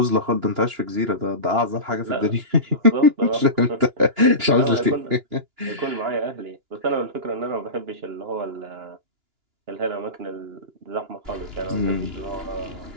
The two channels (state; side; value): late; left; 2.9 ms